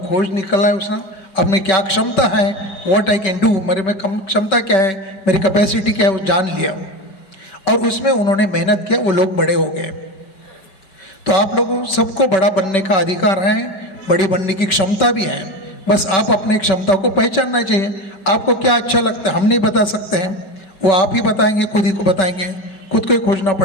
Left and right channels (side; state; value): right; late; 5.2 ms